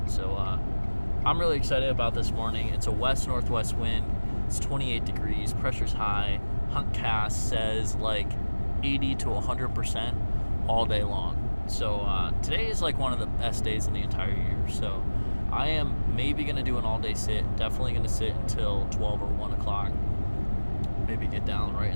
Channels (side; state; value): both; inverted; correlation -1.00